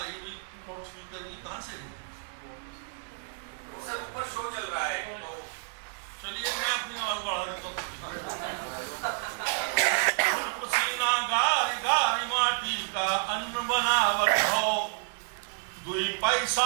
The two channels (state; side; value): silent; left; 58 dB below the other